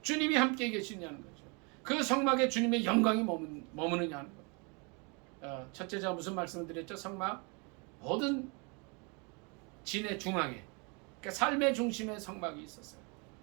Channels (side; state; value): left; quieter; 32.1 dB